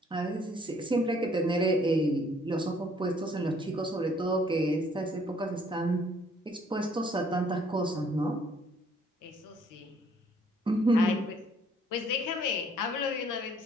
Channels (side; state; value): both; normal; correlation 0.62